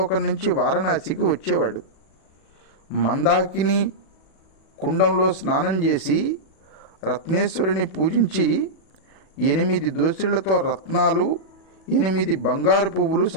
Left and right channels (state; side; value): late; right; 37 ms